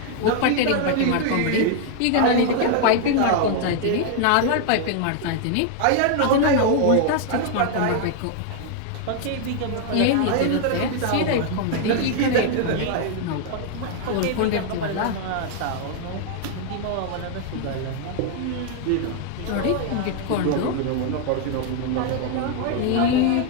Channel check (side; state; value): both; different; correlation 0.00